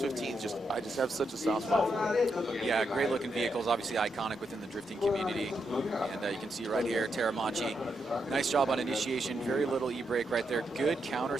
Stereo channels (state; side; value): normal; both; correlation 0.82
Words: I just have such a soft spot for it. Yeah, great looking vehicles, obviously iconic within the drifting community. And you can see right here, Teramachi, nice job on initiation, very little e-brake right there, good counter